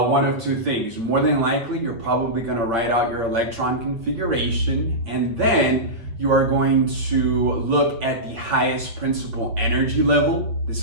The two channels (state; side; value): late; left; 8.6 ms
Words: of two things. More than likely, you're probably going to write out your electron configuration, and then you are going to look at the highest principal energy level. This